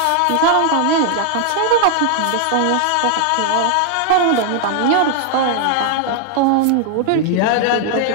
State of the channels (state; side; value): different; both; correlation 0.00